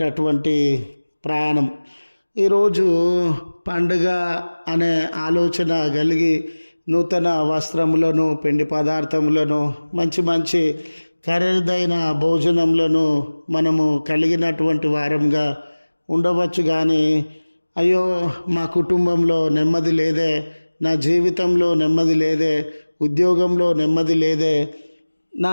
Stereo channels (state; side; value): inverted; both; correlation -1.00